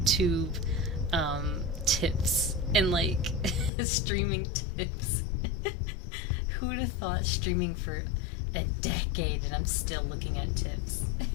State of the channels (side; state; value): right; drops out; at 3.7 s